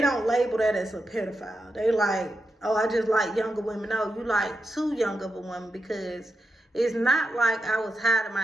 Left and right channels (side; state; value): both; normal; correlation 0.88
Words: don't label that as a pedophile. They like, oh, I just like younger women. No, you like too young of a woman, because it's not like I was hiding